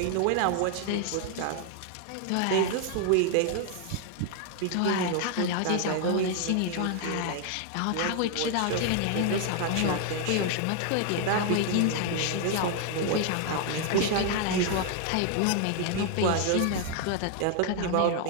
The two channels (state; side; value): different; both; correlation 0.00